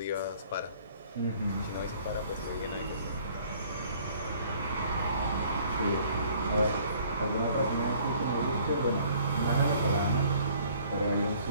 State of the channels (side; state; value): both; inverted; correlation -0.57